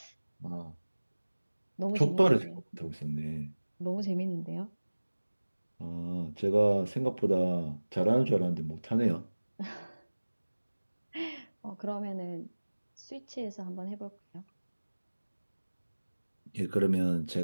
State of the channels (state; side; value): inverted; both; correlation -1.00